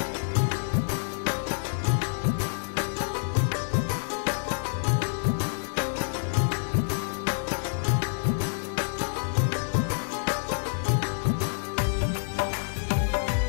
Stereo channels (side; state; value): right; silent; digital silence